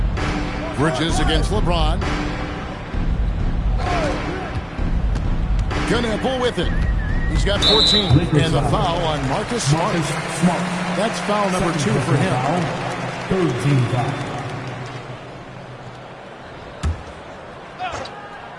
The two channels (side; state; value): both; identical; correlation 1.00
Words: Bridges against LeBron. Kneppel with it. He's got 14. And the foul on Marcus Smart. That's foul number 2 for him. 13 foul.